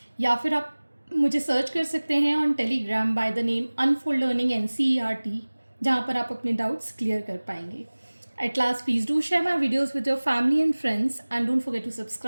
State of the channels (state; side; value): inverted; both; correlation -1.00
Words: या फिर आप मुझे सर्च कर सकते हैं on Telegram by the name unfold learning NCERT, जहाँ पर आप अपने डाउट्स क्लियर कर पाएंगे। At last, please do share my videos with your family and friends and don't forget to